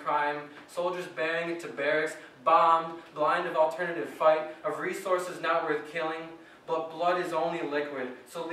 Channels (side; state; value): both; identical; correlation 1.00